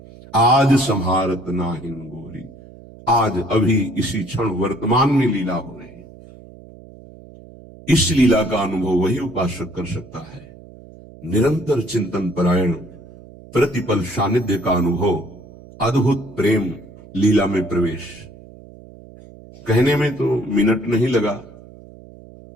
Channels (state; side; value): noise; right; hum, 20 dB below the sound